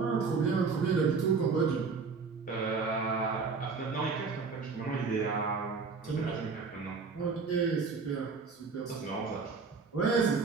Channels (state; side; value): quieter; left; 4.8 dB